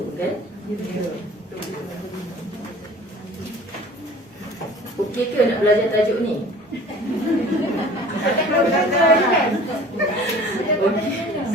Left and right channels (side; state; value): both; normal; correlation 0.45